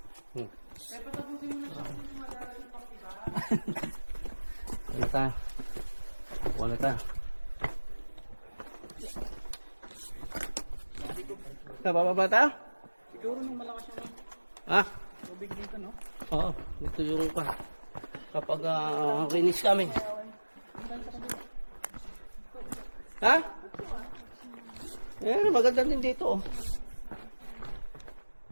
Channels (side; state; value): both; inverted; correlation -1.00